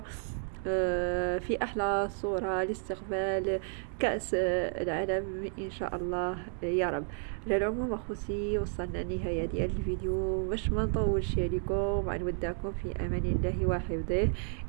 في أحلى صورة لاستقبال كأس العالم إن شاء الله يا رب. على العموم أخوتي وصلنا لنهاية ديال الفيديو، باش ما نطولش عليكم نودعكم في أمان الله وحفظه.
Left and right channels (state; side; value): silent; left; 57 dB below the other